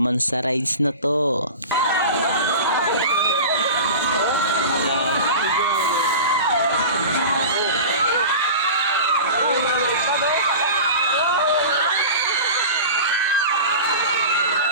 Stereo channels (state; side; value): inverted; both; correlation -0.32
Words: sa rides na to.